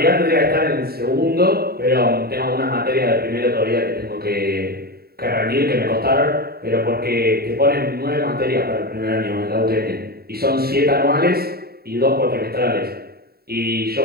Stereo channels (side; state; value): left; late; 0.45 ms